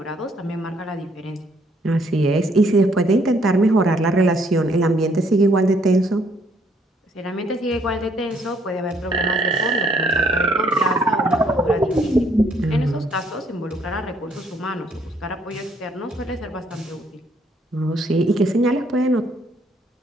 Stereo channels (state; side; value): normal; both; correlation 0.68